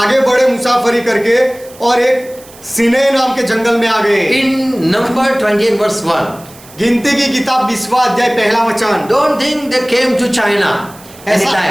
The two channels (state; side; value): noise; right; hiss, 22 dB below the sound